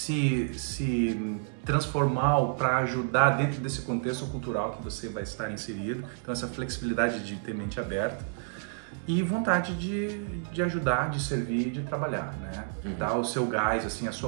transformar ou para ajudar dentro desse contexto cultural que você vai estar inserido. Então essa flexibilidade de ter mente aberta e vontade de ajudar, de servir, de trabalhar, né? Dar o seu gás, assim, a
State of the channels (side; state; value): left; silent; 58 dB below the other